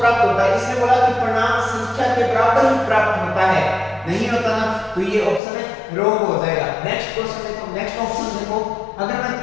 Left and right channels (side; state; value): right; drops out; at 5.4 s